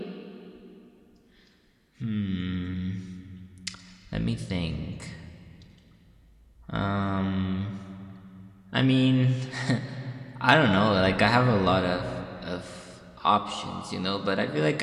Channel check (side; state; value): both; identical; correlation 1.00